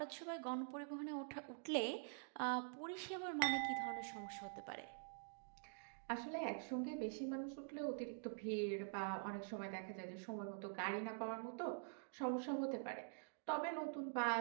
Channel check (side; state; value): left; silent; digital silence